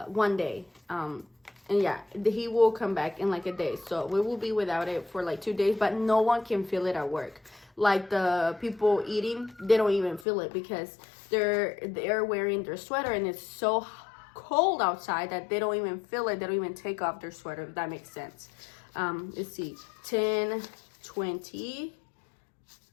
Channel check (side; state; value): right; drops out; at 10.2 s